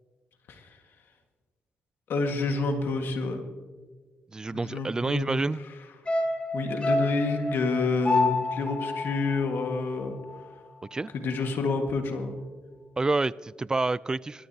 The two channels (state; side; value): normal; both; correlation 0.80